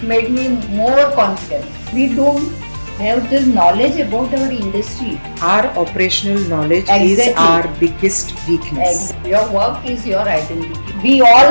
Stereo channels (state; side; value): inverted; both; correlation -1.00